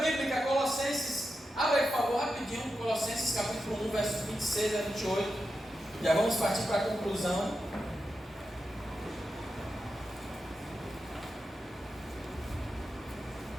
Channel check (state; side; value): normal; both; correlation 0.89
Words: Colossenses, abre aí por favor rapidinho, Colossenses capítulo 1, versos 26 a 28. Já vamos partir para a conclusão.